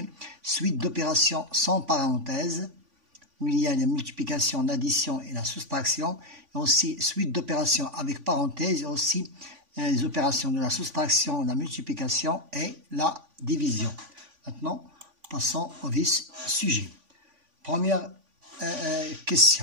Suite d'opérations sans parenthèse, où il y a la multiplication, l'addition et la soustraction, et aussi suite d'opérations avec parenthèse, et aussi les opérations de la soustraction, la multiplication et la division. Maintenant, passons au vif sujet. Première question.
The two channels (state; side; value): late; left; 3.5 ms